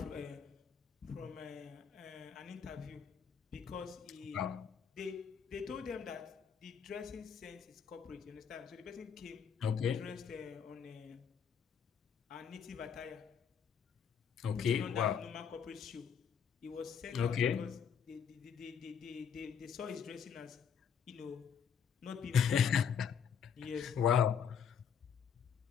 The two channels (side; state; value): right; quieter; 7.3 dB